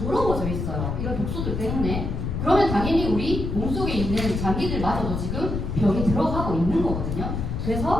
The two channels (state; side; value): noise; left; rumble, 3 dB below the sound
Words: 있어요. 이런 독소들 때문에. 그러면 당연히 우리 몸속에 있는 장기들마저도 지금 병이 들어가고 있는 거거든요.